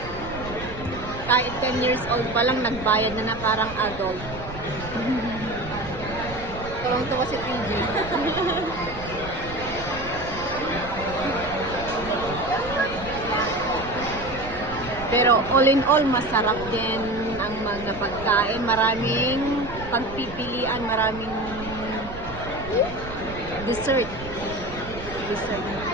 Kahit 10 years old pa lang, nagbayad na parang adult. Tuwang-tuwa si PG. Pero all in all, masarap din ang mga pagkain. Maraming pagpipilian, maraming dessert.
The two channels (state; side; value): noise; right; rumble, 12 dB below the sound